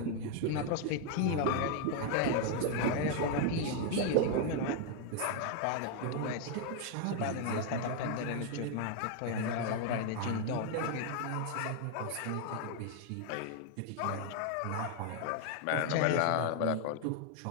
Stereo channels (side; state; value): both; different; correlation 0.01